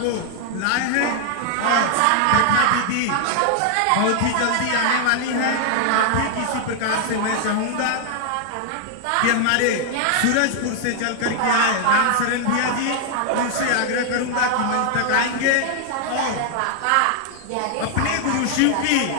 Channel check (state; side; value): different; both; correlation 0.00